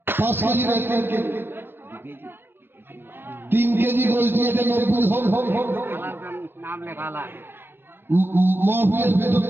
5 কেজি না 3 কেজি, 3 কেজি গোস্ত দিয়ে 90 হোক। মহফিলের ভেতর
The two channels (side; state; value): left; late; 0.10 ms